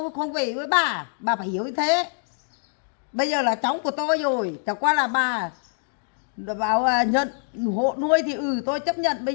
không về với bà. Bà phải hiểu như thế. Bây giờ là cháu của tôi rồi, chẳng qua là bà bảo nhận hộ nuôi thì tôi chấp nhận. Bây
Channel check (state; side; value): silent; right; digital silence